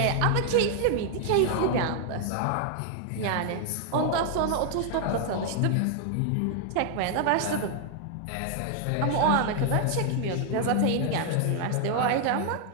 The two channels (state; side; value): different; both; correlation 0.00